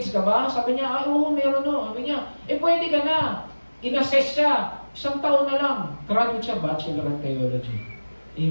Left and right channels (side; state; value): both; inverted; correlation -1.00